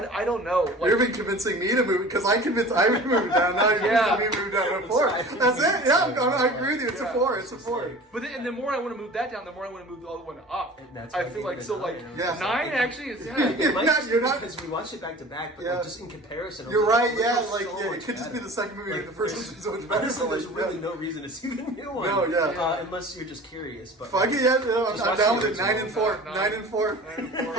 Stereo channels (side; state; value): both; normal; correlation 0.41